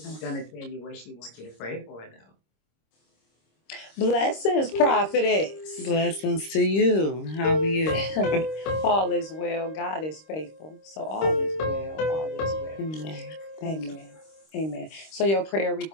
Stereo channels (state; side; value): late; right; 26 ms